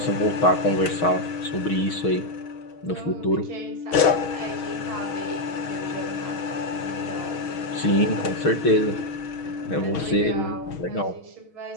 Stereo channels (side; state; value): right; late; 6.3 ms